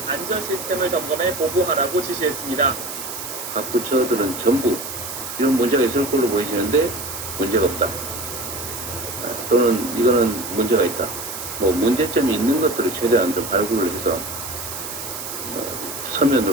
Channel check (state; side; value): noise; right; hiss, 8 dB below the sound